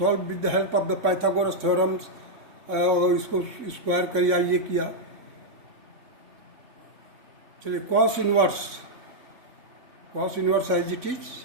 with the help of the Pythagoras theorems, और इसको स्क्वायर किया, ये किया. चलिए cos inverse as it is,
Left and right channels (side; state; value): left; late; 3.6 ms